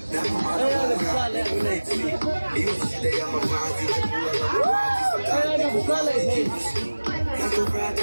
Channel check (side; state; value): both; inverted; correlation -1.00